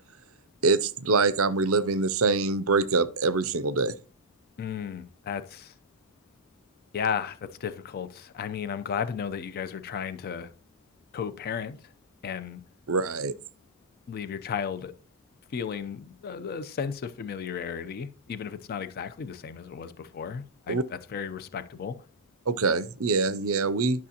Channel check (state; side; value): normal; both; correlation -0.13